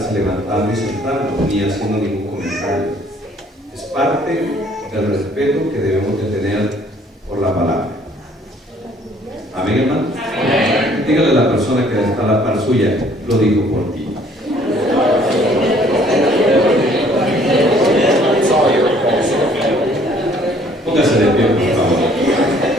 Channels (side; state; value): both; normal; correlation 0.59